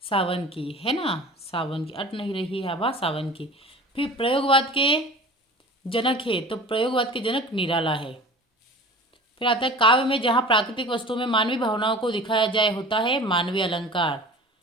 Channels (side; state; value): both; normal; correlation 0.40